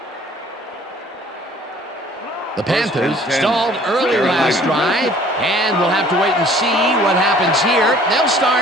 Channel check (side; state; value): both; normal; correlation 0.53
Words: The Panthers stalled early last drive, and we'll have to wait and see what happens here. They'll